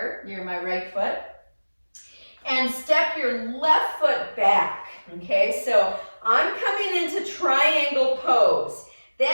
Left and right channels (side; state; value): both; inverted; correlation -1.00